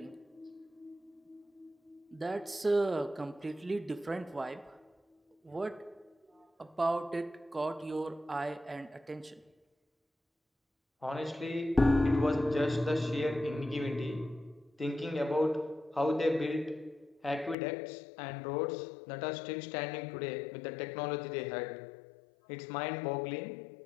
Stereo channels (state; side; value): drops out; right; at 17.6 s